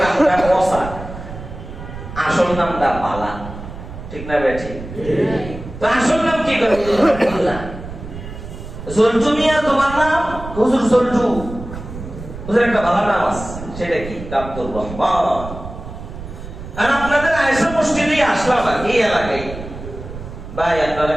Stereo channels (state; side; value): noise; right; rumble, 11 dB below the sound